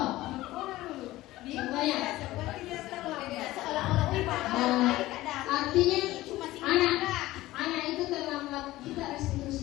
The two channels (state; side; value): quieter; right; 17.1 dB